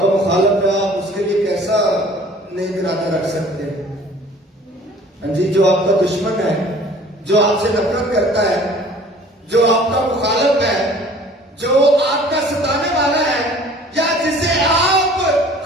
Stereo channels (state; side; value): normal; both; correlation 0.50